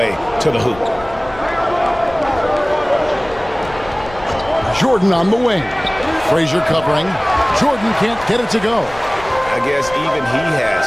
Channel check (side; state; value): left; noise; rumble, 18 dB below the sound